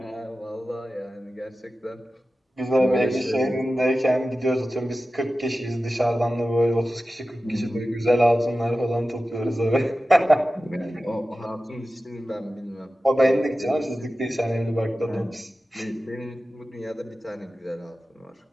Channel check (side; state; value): both; normal; correlation 0.94